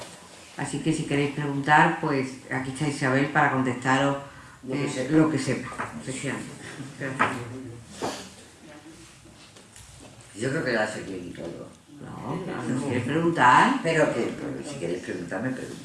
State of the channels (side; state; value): both; identical; correlation 1.00